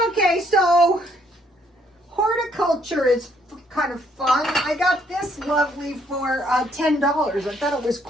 Okay, so horticulture is kind of fun. I got this lovely for $10. I thought it was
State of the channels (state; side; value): normal; both; correlation 0.68